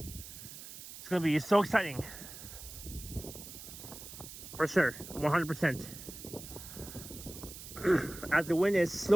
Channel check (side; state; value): right; noise; hiss, 13 dB below the sound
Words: It's gonna be so exciting. For sure, 100%. As the wind is